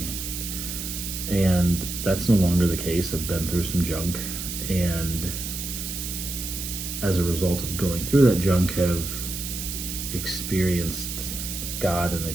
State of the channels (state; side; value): noise; right; hiss, 6 dB below the sound